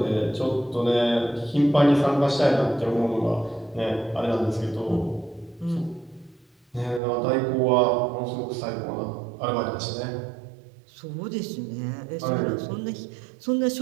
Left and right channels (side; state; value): left; drops out; at 7.0 s